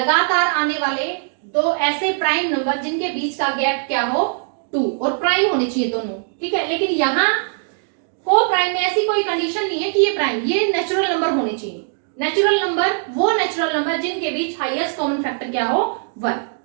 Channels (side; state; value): left; silent; digital silence